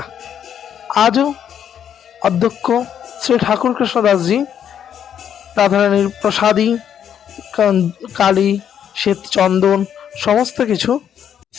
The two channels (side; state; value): right; quieter; 9.1 dB